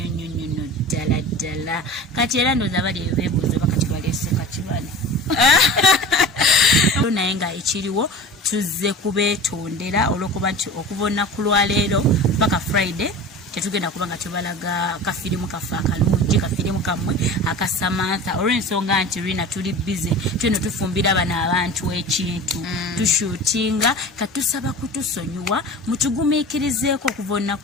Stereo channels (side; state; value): both; normal; correlation 0.35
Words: ddala kati era ndooza bali beebuuza bakati baleese kakibane naye nga ekiriwo tuzze kubeetondera olw'okuba nti okuva olunaku lwaleero paka Friday tetugenda kuba nga tubalaga kafirimu kaffe akalungi kafirimu kammwe aka Samantha olw'ensonga nti Rina tuli busy tweno tufumbira bano abantu ekintu tushootinga katusaba kutusonyiwa mutugumiikirizeeko okuva